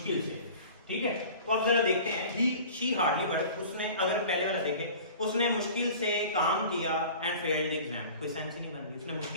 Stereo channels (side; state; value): both; inverted; correlation -0.42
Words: से, ठीक है। तो अब जरा देखते हैं ही शी हार्डली वर्क, उसने अगर पहले वाला देखें उसने मुश्किल से काम किया एंड फेल्ड द एग्जाम, कोई सेंस ही नहीं बन रही, उसने